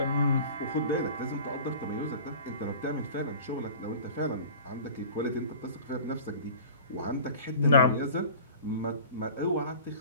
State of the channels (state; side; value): inverted; both; correlation -0.41